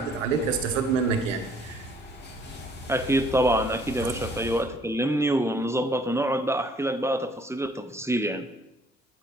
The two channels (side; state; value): both; normal; correlation 0.60